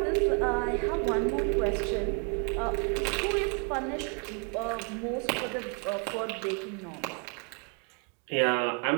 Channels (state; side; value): quieter; left; 36.5 dB